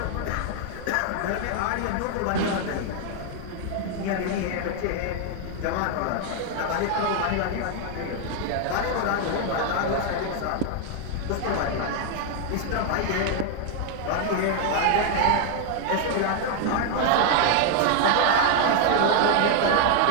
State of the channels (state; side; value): different; both; correlation 0.00